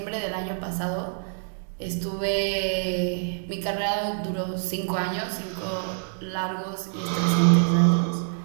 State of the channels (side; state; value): left; silent; digital silence